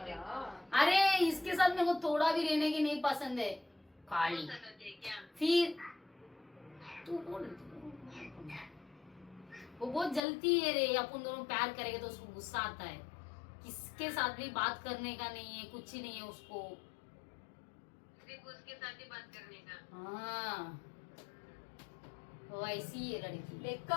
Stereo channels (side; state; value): right; drops out; at 10.2 s